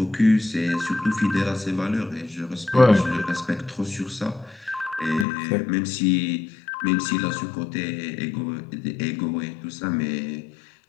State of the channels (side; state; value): right; drops out; at 5.2 s